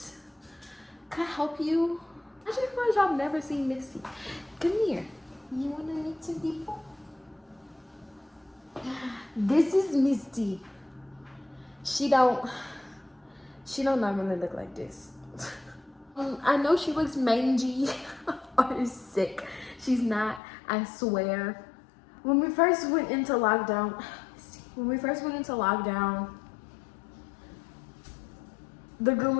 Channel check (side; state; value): right; drops out; at 20.4 s